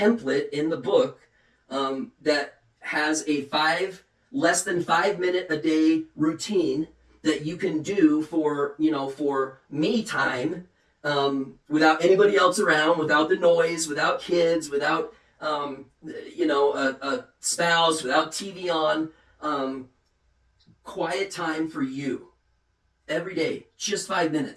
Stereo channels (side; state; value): both; identical; correlation 1.00